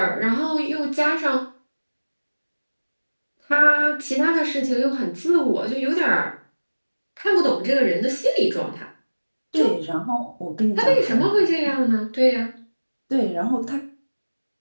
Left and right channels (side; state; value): both; inverted; correlation -1.00